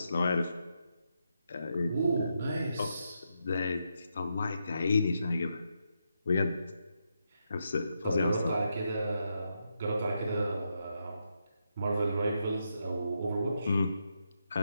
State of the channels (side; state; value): both; inverted; correlation -0.83